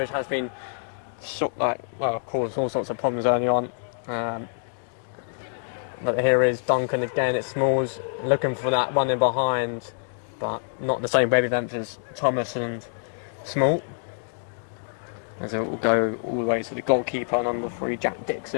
has been caused all sorts of problems early on. But here is Duncan again. It's Smalls looking for that one in behind, but not the same wavelength as Thomas and Small. As it will go all the way to the goalkeeper, number 3, Jack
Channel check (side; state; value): right; silent; digital silence